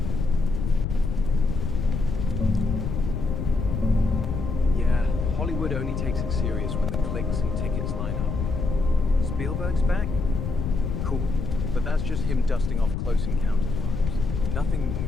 Yeah, Hollywood only takes it serious when the clicks and tickets line up. Spielberg's back? Cool. But that's just him dusting off Close Encounters vibes. Nothing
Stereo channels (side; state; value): left; noise; rumble, 3 dB below the sound